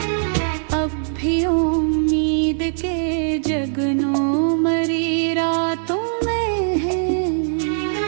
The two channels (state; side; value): silent; left; 64 dB below the other